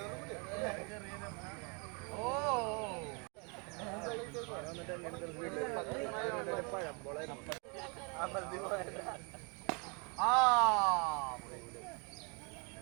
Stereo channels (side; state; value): left; quieter; 33.8 dB